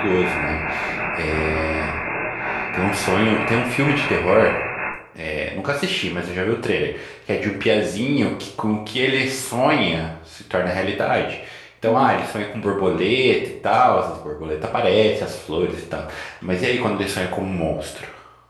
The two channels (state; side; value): identical; both; correlation 1.00